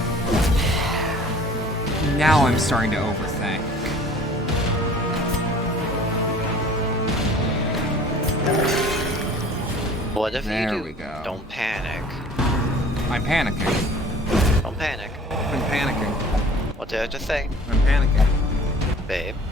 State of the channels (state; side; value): normal; both; correlation 0.48